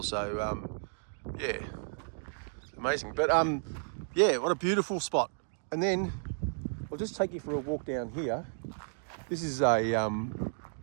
So yeah, it's amazing. But yeah, what a beautiful spot. And then I'll just take you for a walk down here. This is I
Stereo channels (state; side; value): silent; left; digital silence